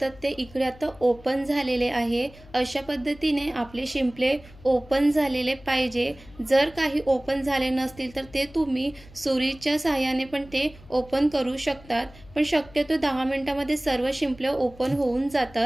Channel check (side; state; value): left; noise; hum, 22 dB below the sound